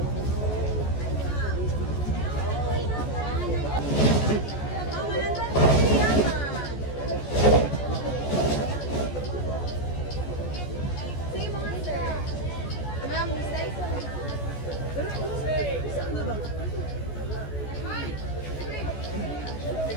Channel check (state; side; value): late; right; 14 ms